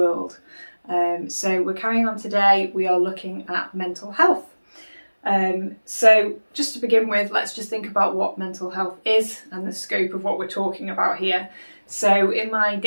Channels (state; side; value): inverted; both; correlation -1.00